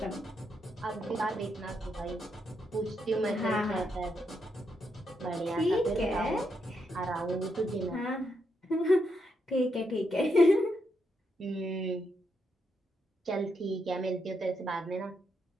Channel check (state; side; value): normal; both; correlation 0.80